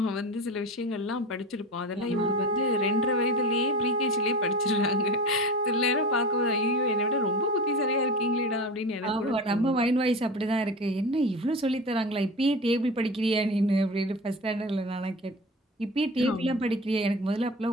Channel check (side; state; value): both; normal; correlation 0.30